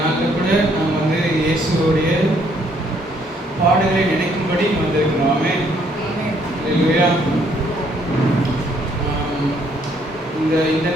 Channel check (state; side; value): normal; both; correlation 0.67